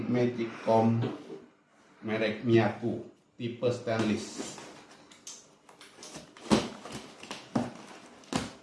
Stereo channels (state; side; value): identical; both; correlation 1.00